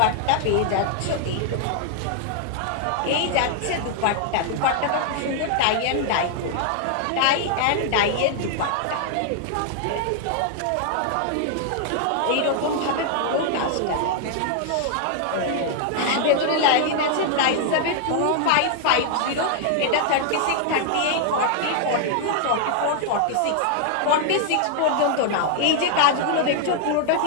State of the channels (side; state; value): both; different; correlation 0.00